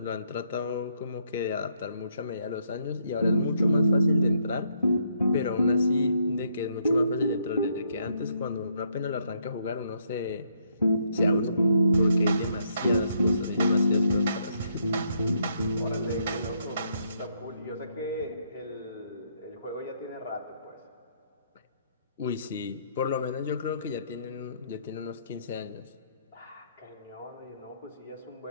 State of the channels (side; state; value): both; inverted; correlation -0.73